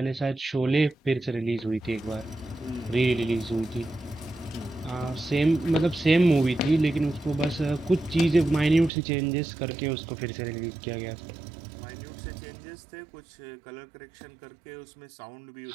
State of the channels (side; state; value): left; drops out; at 8.9 s